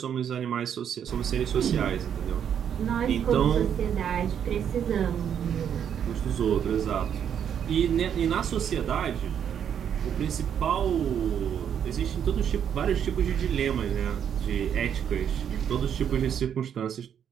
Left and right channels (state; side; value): quieter; left; 8.7 dB